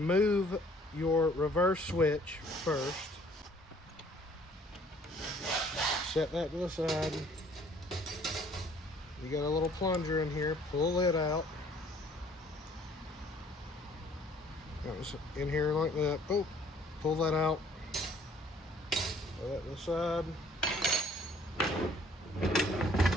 your reverse switch first. Set that to the side. You got a little plunger in here, pull it out. That was in here like that. Oh, pull that out. Put that to the side.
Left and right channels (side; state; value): both; normal; correlation 0.58